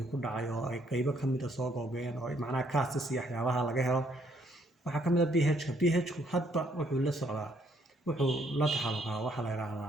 ku dhacay oo ay qaybo ka mid ah soo googeen oo macnaha castis iyo waxyaabaha laga helo waxaa ka mid ah pH-ku hadba wuxuu la socdaa wuxuu la taxalluqaa waxaa la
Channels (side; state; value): both; normal; correlation 0.68